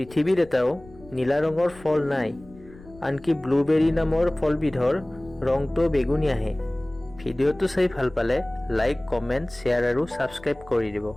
এটাও নীলা ৰঙৰ ফল নাই, আনকি ব্লুবেৰী নামৰ ফলবিধৰ ৰংটো বেগুনীয়াহে। ভিডিঅ'টো চাই ভাল পালে লাইক, কমেণ্ট, শ্বেয়াৰ আৰু ছাবস্ক্ৰাইব কৰি দিব।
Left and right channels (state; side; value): noise; left; rumble, 22 dB below the sound